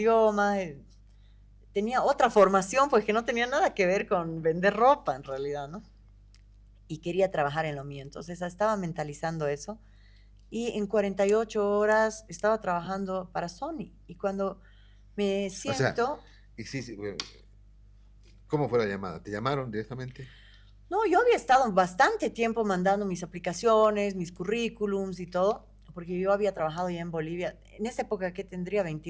tenía otra formación, pues que no tenía nada que ver con vender ropa en realidad, ¿no? Y quería trabajar en lo mío, entonces estaba mentalizando eso, y en 48 horas estaba trabajando para Sony, y cuando Me O sea, siento. y sí, sí, bueno, ¿cómo fue la llamada? ¿Te llamaron directamente? No, yo había estado bastante tiempo mandando mis aplicaciones, mis currículums y todo, porque yo había trabajado ya en Bolivia, en esa época que tendría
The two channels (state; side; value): identical; both; correlation 1.00